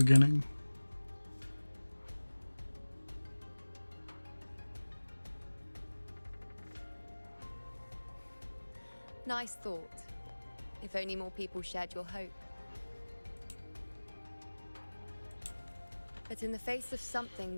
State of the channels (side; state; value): both; inverted; correlation -1.00